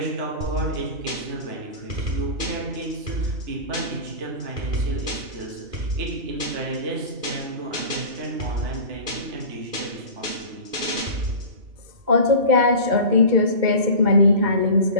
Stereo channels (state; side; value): late; left; 2.2 ms